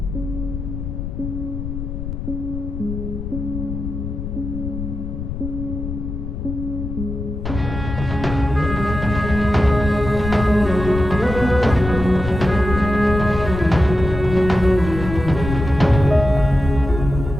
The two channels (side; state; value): left; noise; rumble, 6 dB below the sound